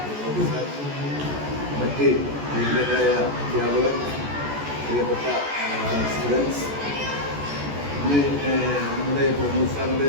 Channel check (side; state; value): left; late; 14 ms